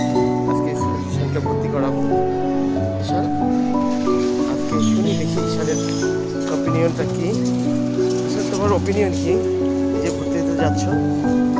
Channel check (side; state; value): both; identical; correlation 1.00